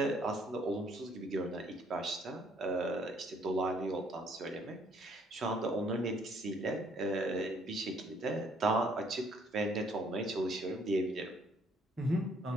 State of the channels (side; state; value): both; normal; correlation 0.64